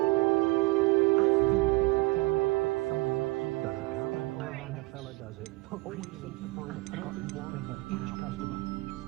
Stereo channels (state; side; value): quieter; left; 22.9 dB